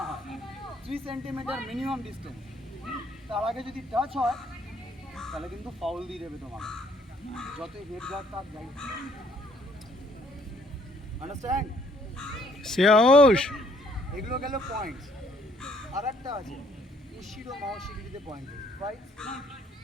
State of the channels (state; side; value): normal; both; correlation 0.64